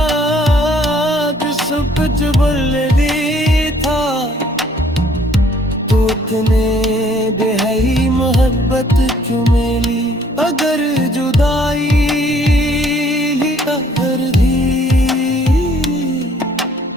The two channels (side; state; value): both; normal; correlation 0.61